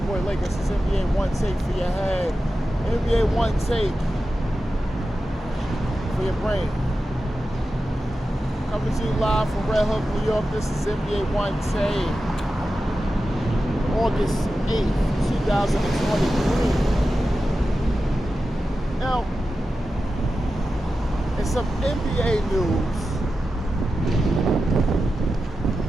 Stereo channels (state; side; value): normal; both; correlation 0.92